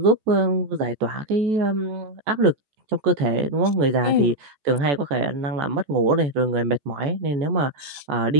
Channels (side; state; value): left; late; 14 ms